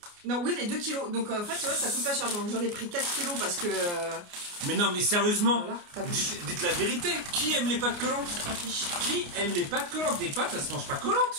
Non, oui, les 2 kilos. Donc, en fait, tu vois, ça coûte pas cher. J'en ai pris 4 kilos parce que. Mais non, mais sérieusement, voilà, dites la vérité. Qui aime les pâtes collantes? Qui aime les pâtes collantes? Des pâtes, ça se mange pas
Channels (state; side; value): late; left; 29 ms